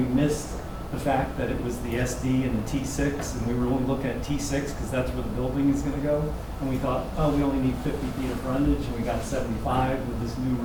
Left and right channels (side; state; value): both; identical; correlation 1.00